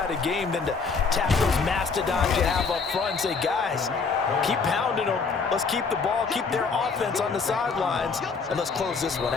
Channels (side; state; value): right; quieter; 4.9 dB